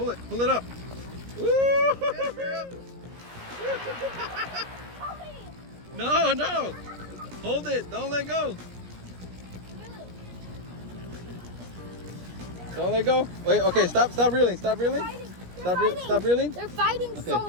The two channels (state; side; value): late; left; 17 ms